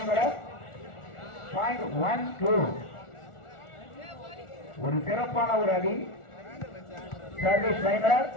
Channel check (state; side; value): late; right; 1.4 ms